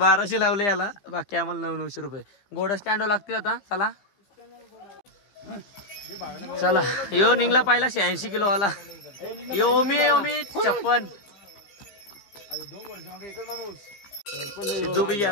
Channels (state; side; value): late; right; 15 ms